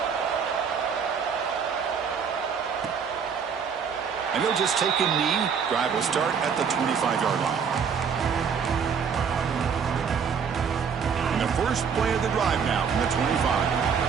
And they'll just take a knee. Drive will start at the 25-yard line. And the first play of the drive now from the 25.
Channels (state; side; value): quieter; left; 6.6 dB